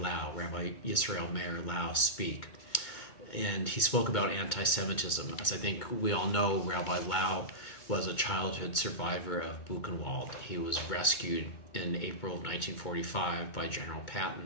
Rabbi Yisrael Meir Lau, speak. And he spoke about anti-Semitism. As I think we all know, Rabbi Lau was a childhood survivor of Buchenwald. He was rescued in April of 1945 by General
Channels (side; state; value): right; late; 2.2 ms